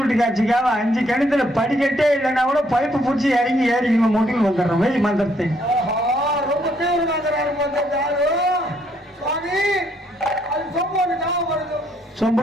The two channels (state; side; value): normal; both; correlation 0.70